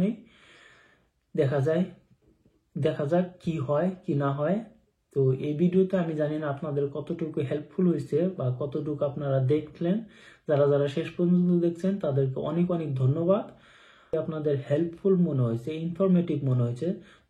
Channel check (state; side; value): identical; both; correlation 1.00